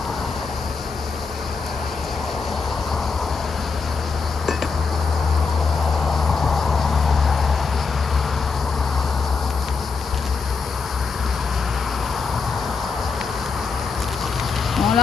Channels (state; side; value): quieter; right; 4.9 dB